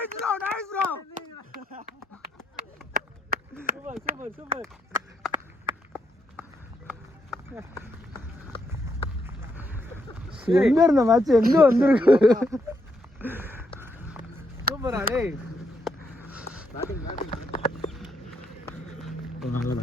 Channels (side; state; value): both; normal; correlation 0.78